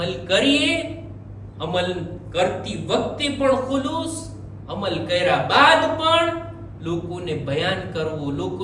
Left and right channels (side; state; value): both; identical; correlation 1.00